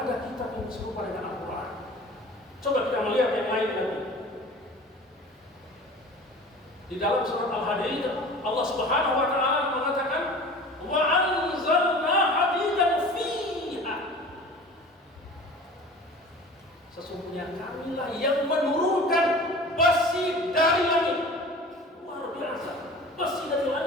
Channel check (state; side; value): normal; both; correlation 0.41